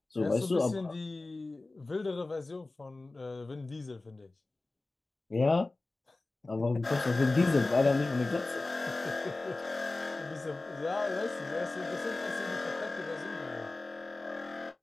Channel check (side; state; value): right; quieter; 3.2 dB